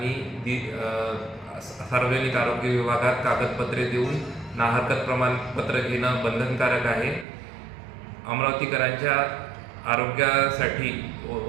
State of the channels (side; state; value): left; drops out; at 7.2 s